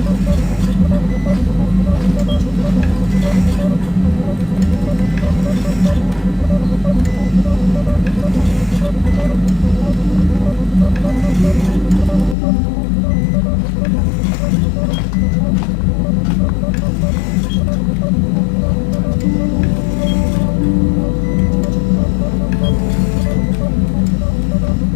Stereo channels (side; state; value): right; drops out; at 12.4 s